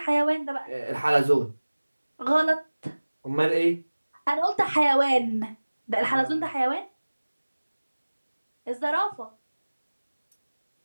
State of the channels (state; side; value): inverted; both; correlation -1.00